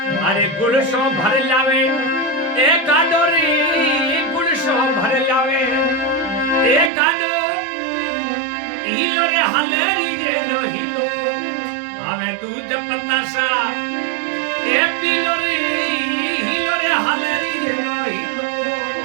अरे गुड़ सो भर लावे ए गाडो रे गुड़ सो भर लावे ए गाडो हिलो रे हलेरी गे नो हिलो हमें दूध पतासा ए पीलो रे हिलो रे हलेरी गे नो हिलो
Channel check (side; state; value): left; drops out; at 6.9 s